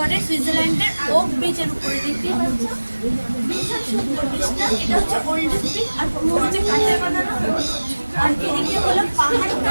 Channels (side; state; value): both; inverted; correlation -1.00